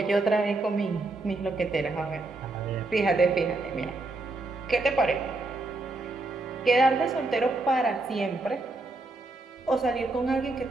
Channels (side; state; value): left; quieter; 3.1 dB